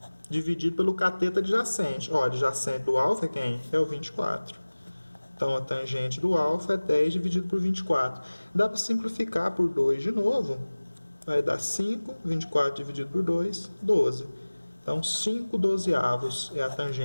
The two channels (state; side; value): inverted; both; correlation -1.00